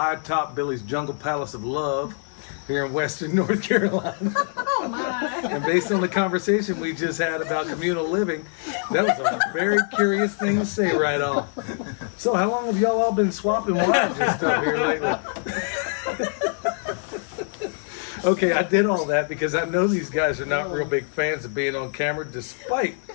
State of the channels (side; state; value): right; silent; 58 dB below the other